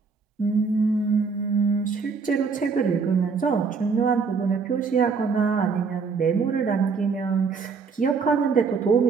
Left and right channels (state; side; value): quieter; left; 5.2 dB